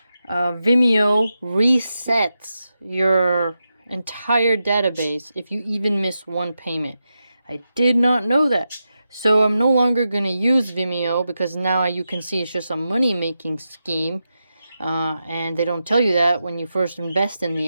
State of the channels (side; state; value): both; inverted; correlation -0.89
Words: Vimeo resets your entire database if you even miss one payment. I did not know that. So, I'm no longer going to use Vimeo because now you can see it's just a money-making scheme. And they don't tell you that when you first invest in the